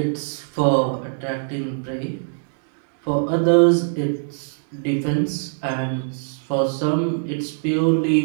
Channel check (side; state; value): left; silent; digital silence